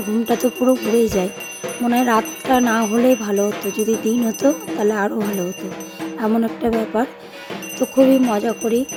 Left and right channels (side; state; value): both; identical; correlation 1.00